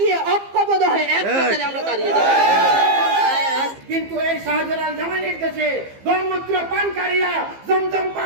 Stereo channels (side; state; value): left; late; 15 ms